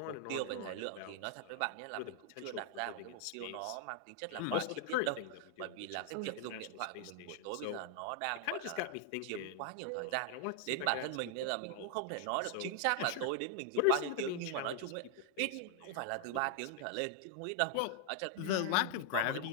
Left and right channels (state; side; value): different; both; correlation 0.00